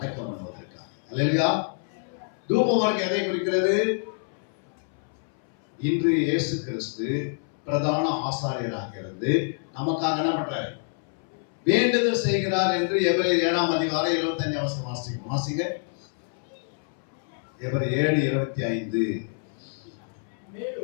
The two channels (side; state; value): right; silent; 60 dB below the other